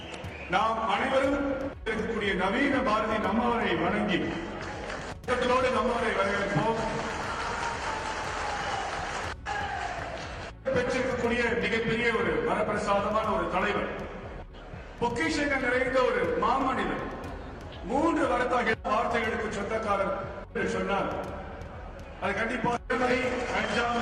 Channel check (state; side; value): identical; both; correlation 1.00